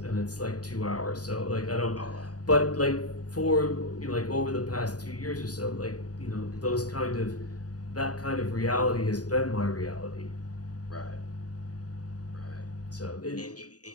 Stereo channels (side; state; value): right; late; 0.68 ms